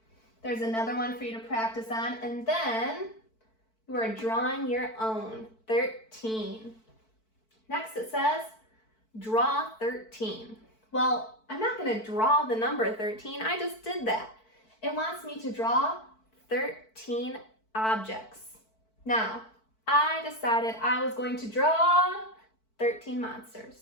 There's another one for you to practice on, and then you are drawing your own 13. Next it says, draw 13. Well, I'm not going to draw the number 13, I just did that. It wants me to draw 13 objects. Now, I decided I was going to draw 13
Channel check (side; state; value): right; late; 4.5 ms